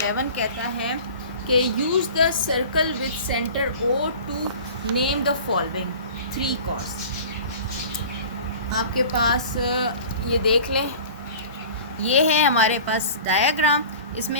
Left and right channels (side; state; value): both; inverted; correlation -0.41